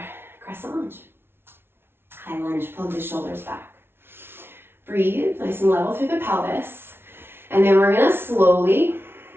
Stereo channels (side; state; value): left; late; 0.11 ms